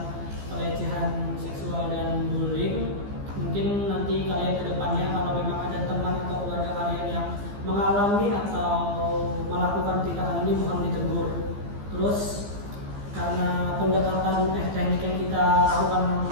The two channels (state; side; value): late; left; 15 ms